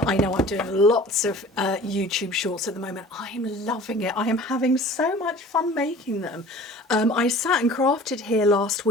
know I'm doing lots of YouTube shorts at the moment. I'm loving it. I am having so much fun making them. I sat and crafted here last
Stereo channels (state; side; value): normal; both; correlation 0.44